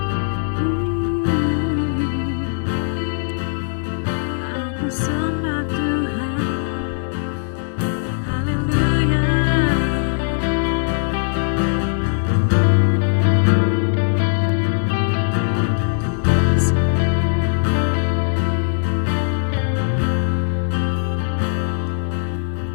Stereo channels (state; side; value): silent; right; digital silence